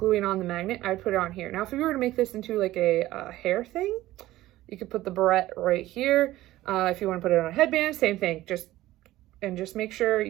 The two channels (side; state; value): left; quieter; 16.0 dB